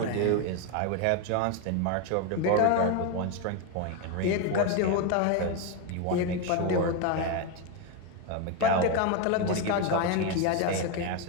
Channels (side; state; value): both; different; correlation 0.02